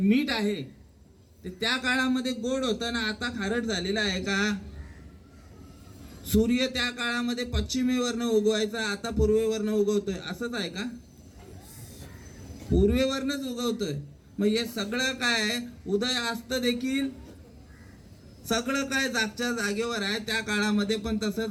आहे ते त्या काळामध्ये गोड होतं ना आता खारट झालेलं आहे का? सूर्य त्या काळामध्ये पश्चिमेवरनं उगवायचा, आता पूर्वेवरनं उगवतोय, असंच आहे का? पूर्वेवरनच उगवतोय. मग हे सगळं काय उदय अस्त देखील सगळं काय जागच्या जागेवर आहे. त्या काळामध्ये पण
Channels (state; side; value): identical; both; correlation 1.00